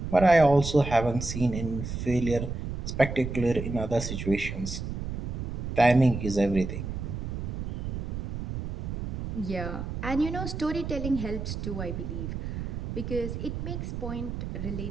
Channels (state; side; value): noise; right; rumble, 5 dB below the sound